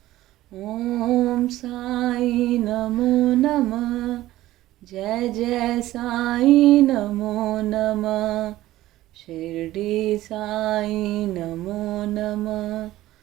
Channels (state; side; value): quieter; left; 15.6 dB